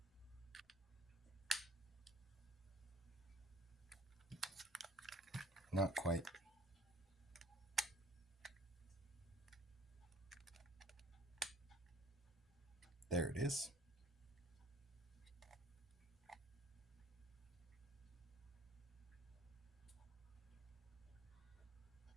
Not quite. There it is.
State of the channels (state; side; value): normal; both; correlation 0.56